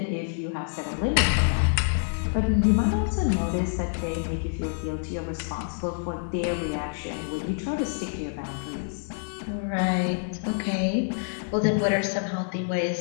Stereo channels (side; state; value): right; silent; digital silence